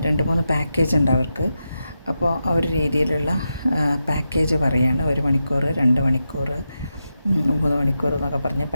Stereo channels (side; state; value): both; inverted; correlation -0.88